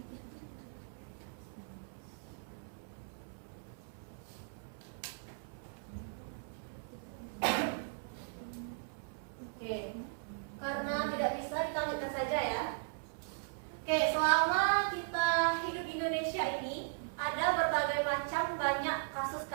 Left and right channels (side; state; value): left; silent; 53 dB below the other